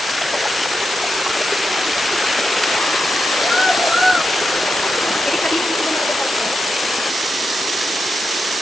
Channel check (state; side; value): normal; both; correlation 0.87